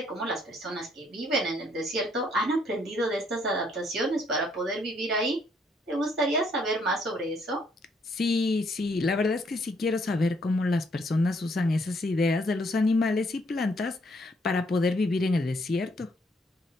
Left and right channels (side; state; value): both; normal; correlation 0.69